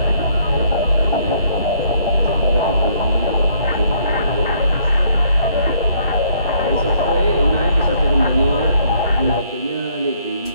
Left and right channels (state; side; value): inverted; both; correlation -0.65